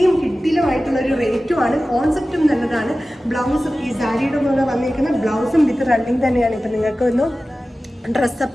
കിടിലമായിട്ടുള്ളൊരു റേറ്റുമാണ്, കോൺസെപ്റ്റും നല്ലതാണ്. ബ്ലൗസും ഈ സാരിയുടെ പോലെ വന്നിരിക്കുന്ന ബ്ലൗസും വിത്ത് റണ്ണിങ് തന്നെയാണ്. ഇപ്പം നിങ്ങൾക്ക് ഒന്ന്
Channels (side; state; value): both; normal; correlation 0.96